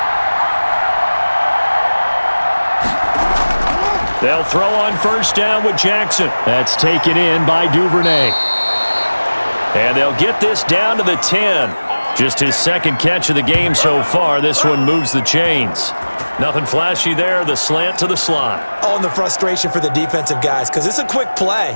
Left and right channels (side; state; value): both; inverted; correlation -1.00